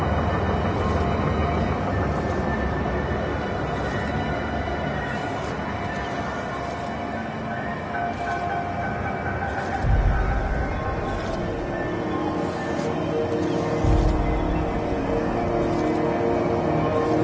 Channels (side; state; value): both; identical; correlation 1.00